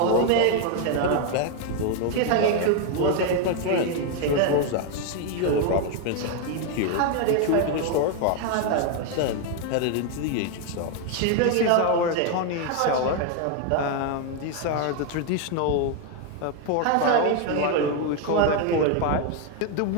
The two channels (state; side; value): different; both; correlation 0.01